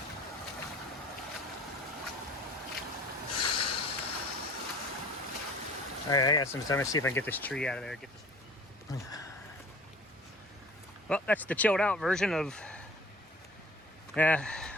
All right, I got some time to see if I can get this tree out of there. Get this. Well, that's the chilled out version of,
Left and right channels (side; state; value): both; normal; correlation 0.46